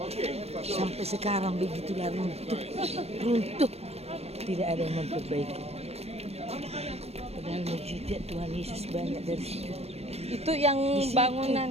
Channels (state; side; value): late; left; 0.30 ms